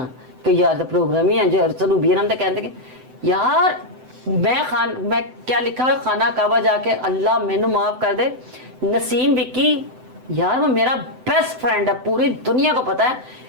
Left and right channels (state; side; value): late; left; 7.9 ms